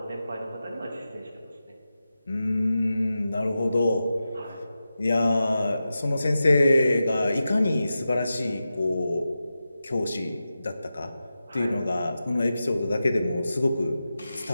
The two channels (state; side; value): inverted; both; correlation -0.92